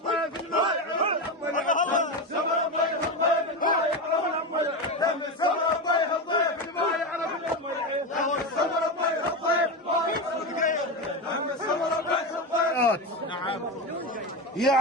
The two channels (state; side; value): normal; both; correlation 0.17